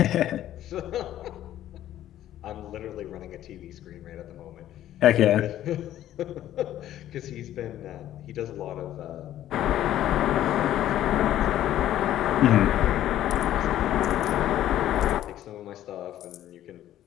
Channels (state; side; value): quieter; right; 12.5 dB